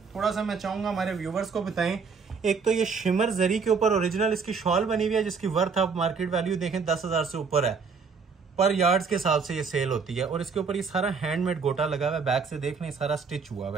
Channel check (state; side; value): quieter; left; 5.3 dB